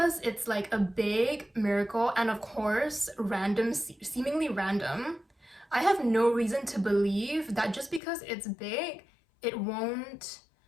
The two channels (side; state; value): right; drops out; at 8.0 s